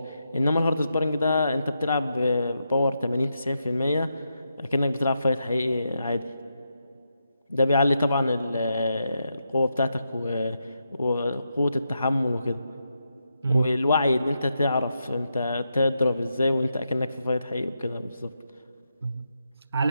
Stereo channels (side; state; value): both; inverted; correlation -0.84